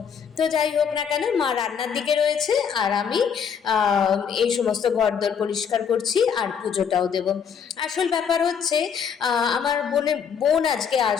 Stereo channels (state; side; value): quieter; right; 7.2 dB